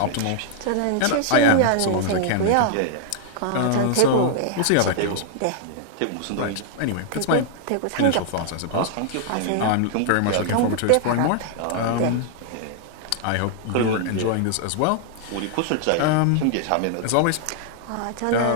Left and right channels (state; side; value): different; both; correlation 0.00